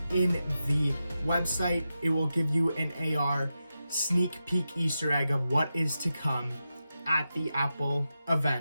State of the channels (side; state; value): both; inverted; correlation -0.90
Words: in the website, it will give you an AR sneak peek Easter egg of what is to come at the Apple